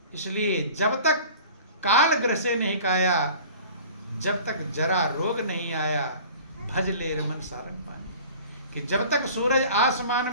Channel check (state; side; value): inverted; both; correlation -0.44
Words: इसलिए जब तक काल ग्रह से नहीं काया, जब तक जरा रोग नहीं आया, भज ले रमन सारंग पानी। कि जब तक सूरज आसमान